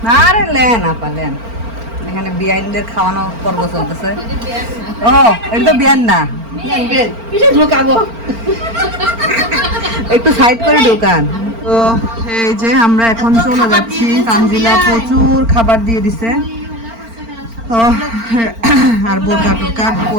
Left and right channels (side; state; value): left; late; 4.4 ms